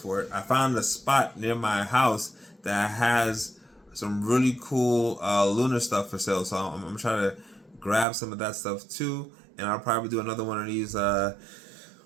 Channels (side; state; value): left; drops out; at 8.1 s